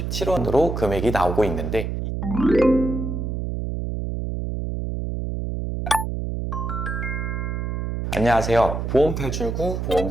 금액이 나오고 있는데, 안녕하세요. 보험탈출구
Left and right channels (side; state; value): right; noise; hum, 3 dB below the sound